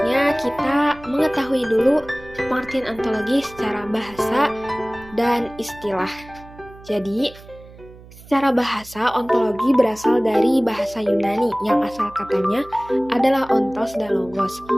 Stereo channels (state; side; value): noise; right; hum, 20 dB below the sound